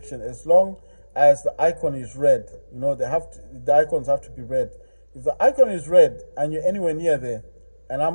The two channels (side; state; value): both; inverted; correlation -1.00